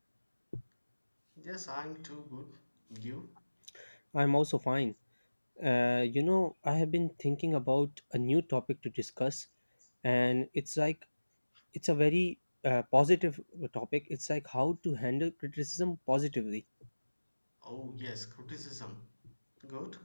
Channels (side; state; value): both; inverted; correlation -1.00